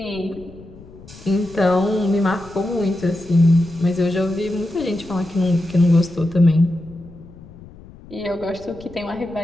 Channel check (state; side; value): noise; left; rumble, 20 dB below the sound